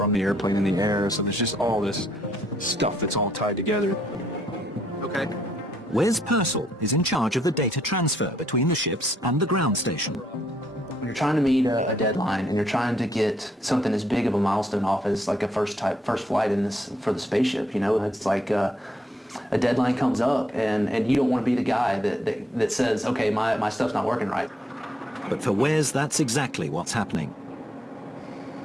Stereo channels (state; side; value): normal; both; correlation 0.72